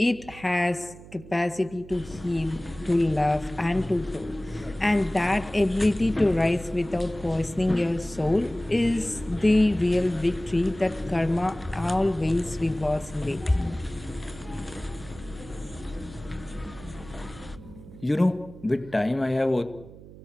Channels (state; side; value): noise; right; hum, 18 dB below the sound